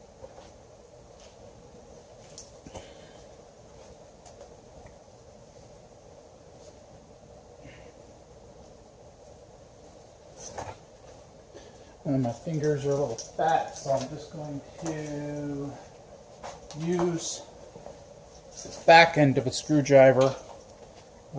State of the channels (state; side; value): identical; both; correlation 1.00